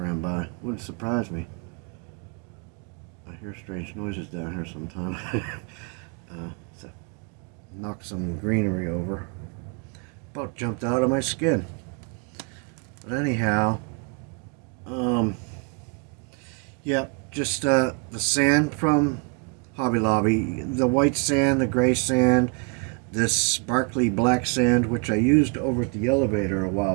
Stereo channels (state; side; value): quieter; left; 35.1 dB